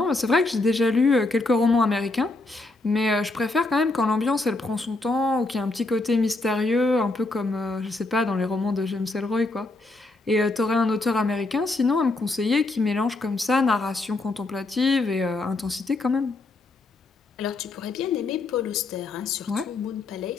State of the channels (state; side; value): quieter; right; 3.1 dB